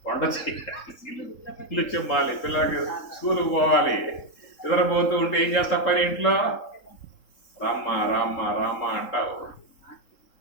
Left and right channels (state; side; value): late; right; 3.7 ms